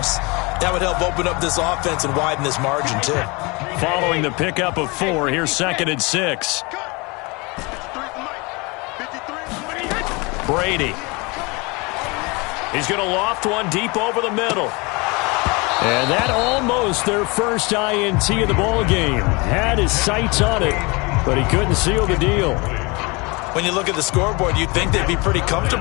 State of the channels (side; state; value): right; quieter; 27.0 dB